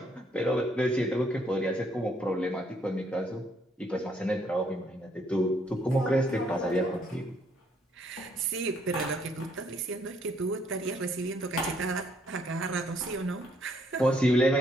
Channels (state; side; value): normal; both; correlation 0.69